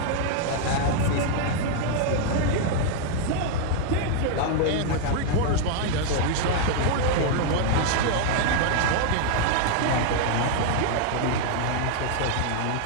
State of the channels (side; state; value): both; different; correlation 0.00